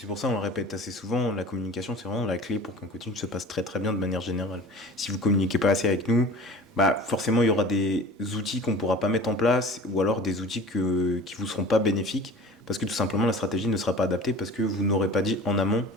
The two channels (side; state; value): both; normal; correlation 0.40